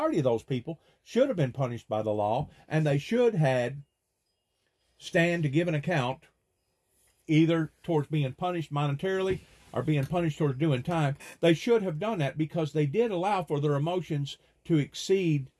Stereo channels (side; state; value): both; identical; correlation 1.00